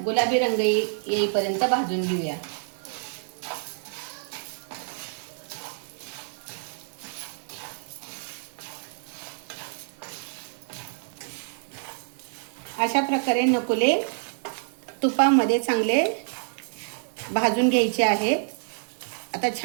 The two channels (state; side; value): silent; left; 59 dB below the other